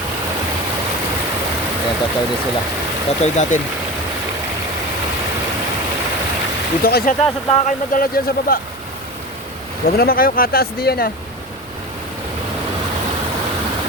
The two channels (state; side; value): noise; right; rumble, 24 dB below the sound